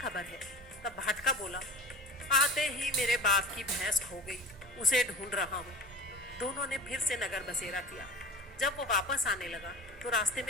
है। तब भाटका बोला, आते ही मेरे बाप की भैंस खो गई, उसे ढूंढ रहा हूँ। दोनों ने फिर से नगर बसेरा किया। जब वो वापस आने लगा तो रास्ते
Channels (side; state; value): both; normal; correlation 0.33